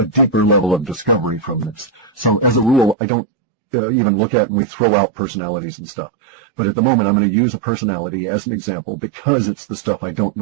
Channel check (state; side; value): drops out; left; at 3.0 s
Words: deeper level of discovery from this. So as a rule, I don't even look at and we throw out personalities and stuff. But at the moment, I'm going to use a personality as an example because it's the stuff I don't